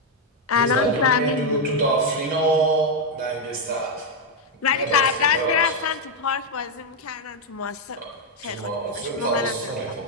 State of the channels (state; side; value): normal; both; correlation 0.01